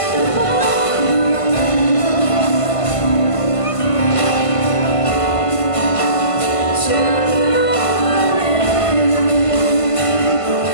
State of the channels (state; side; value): late; right; 1.5 ms